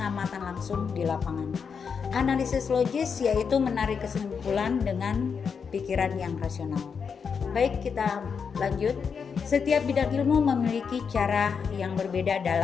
langsung di lapangan. Analisis logis yaitu menarik kesimpulan dengan pikiran yang rasional. Baik, kita lanjut. Setiap bidang ilmu memiliki cara yang berbeda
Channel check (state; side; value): quieter; right; 6.2 dB